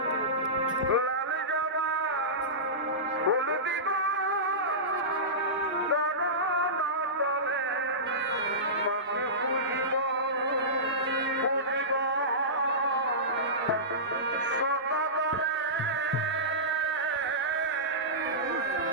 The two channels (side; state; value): both; normal; correlation -0.18